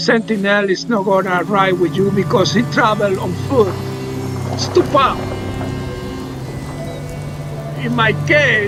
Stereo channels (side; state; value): both; identical; correlation 1.00